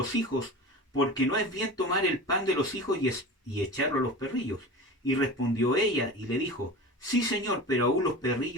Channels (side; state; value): both; normal; correlation 0.33